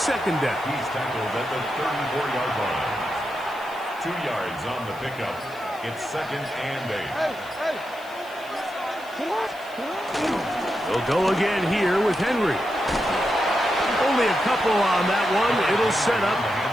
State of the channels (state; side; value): noise; left; hiss, 23 dB below the sound